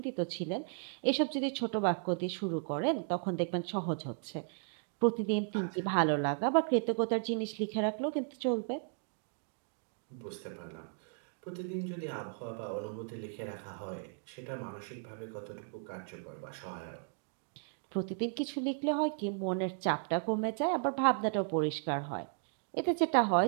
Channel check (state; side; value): silent; left; 54 dB below the other